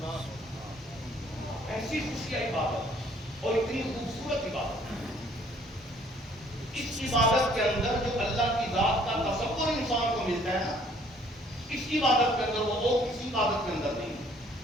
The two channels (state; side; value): normal; both; correlation 0.60